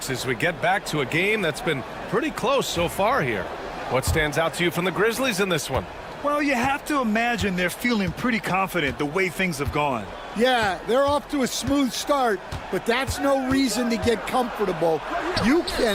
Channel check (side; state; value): both; identical; correlation 1.00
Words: as we get back to a game that's been pretty close so far here. What stands out to you from the Grizzlies in this one? Well, you have to imagine they're feeling pretty confident the way things have gone. Yeah, they're off to a smooth start, but that's no reason to get comfortable. You